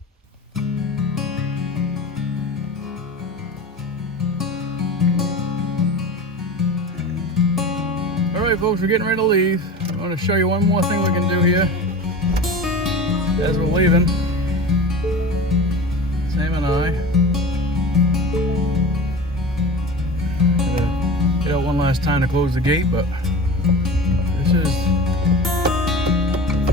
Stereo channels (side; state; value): both; normal; correlation 0.33